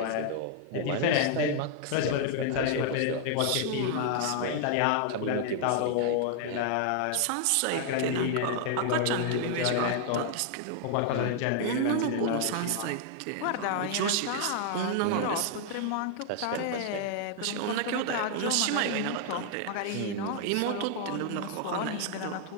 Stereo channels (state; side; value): different; both; correlation 0.00